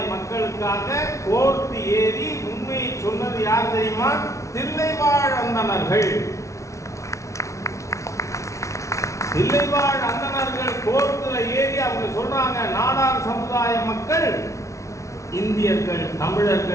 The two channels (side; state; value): right; late; 0.14 ms